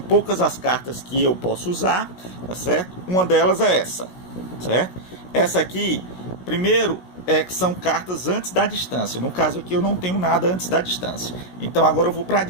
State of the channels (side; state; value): right; late; 16 ms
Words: poucas as cartas que eu posso usar, tá certo? Uma delas é essa, certo? Essa aqui, primeiro, que são cartas antes da distância. No caso aqui eu não tenho nada antes da distância. Então agora eu vou para a